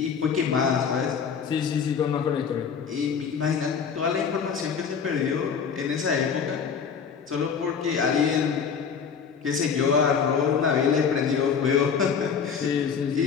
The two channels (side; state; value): right; quieter; 6.5 dB